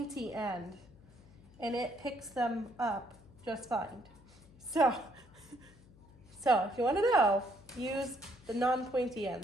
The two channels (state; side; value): noise; left; hum, 24 dB below the sound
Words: end and it picks them up just fine. So if you want to know, use the non-pointy end.